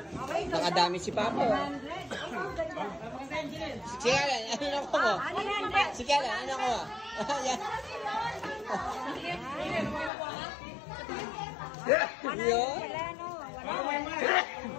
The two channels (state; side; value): drops out; right; at 10.1 s